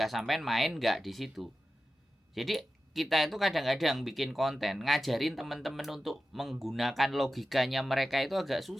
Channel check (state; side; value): normal; both; correlation 0.93